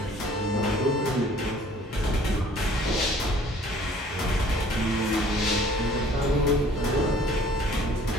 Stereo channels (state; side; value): normal; both; correlation 0.54